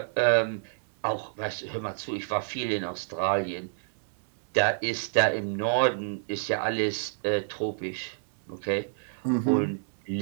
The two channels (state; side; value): silent; left; digital silence